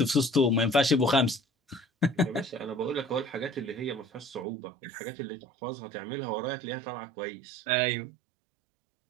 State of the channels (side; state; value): left; drops out; at 4.5 s